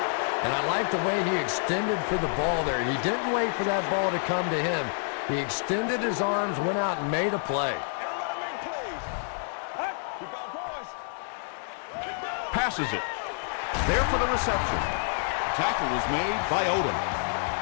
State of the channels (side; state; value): right; silent; 59 dB below the other